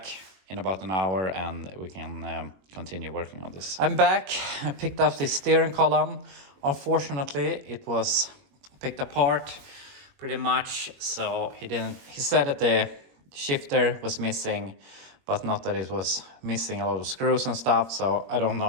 in about an hour, and we can continue working on this. I'm back. I picked up the steering column. Unfortunately, it was picked apart pretty much, so he said that the shifter was missing, but not that it was missing a lot of screws and stuff. So I don't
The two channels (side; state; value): left; late; 21 ms